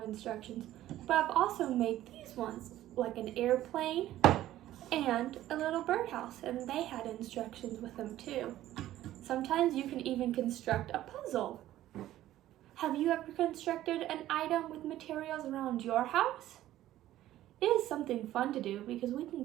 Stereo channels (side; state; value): left; quieter; 13.9 dB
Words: instructions, but I've also made these ones, like an airplane and a little birdhouse, and they had instructions with them too. Sometimes you can even construct a puzzle. Have you ever constructed an item with materials around your house? It is something fun to do because we can